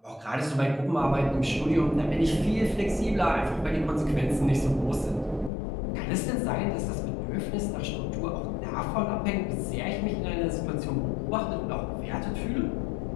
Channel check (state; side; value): drops out; right; at 5.5 s